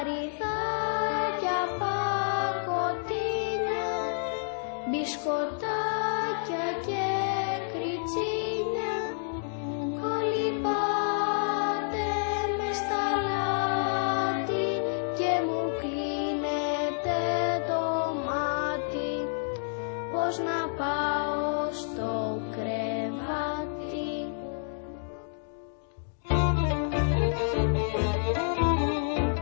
πακοτίνια, μπισκοτάκια και κριτσίνια, κολυμπάτε μες στα λάτι και μου κλείνετε το μάτι. Πώς να πάω στο κρεβάτι.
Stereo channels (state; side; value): silent; right; digital silence